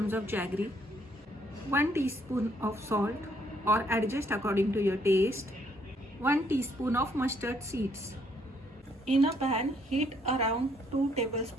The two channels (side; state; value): both; normal; correlation 0.68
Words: of jaggery, 1 teaspoon of salt or adjust according to your taste, 1 teaspoon of mustard seeds. In a pan, heat around 2